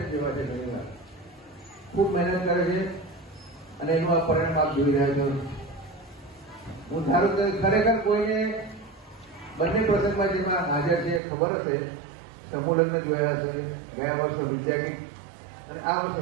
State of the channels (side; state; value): left; drops out; at 11.2 s